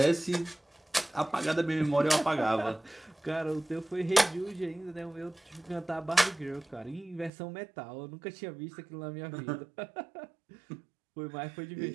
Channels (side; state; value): left; drops out; at 7.3 s